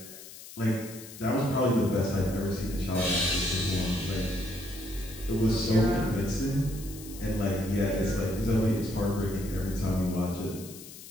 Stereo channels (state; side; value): noise; left; hiss, 15 dB below the sound